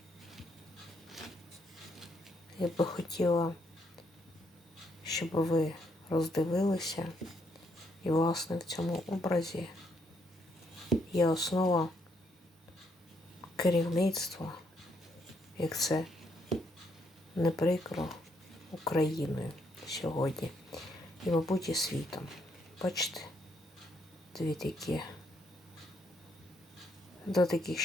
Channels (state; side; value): normal; both; correlation 0.74